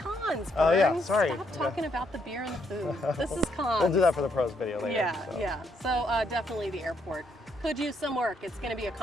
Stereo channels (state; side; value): normal; both; correlation 0.74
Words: pro. cons, Oh, yeah, Bern. sorry. Stop talking about the beer and the food. This is cons. We'll do that for the pros video later. Yeah, so. yeah. So definitely the airport. Could use some work. It's going to be a